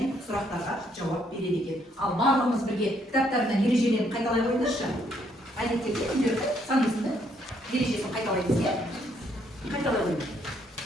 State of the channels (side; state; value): both; normal; correlation 0.70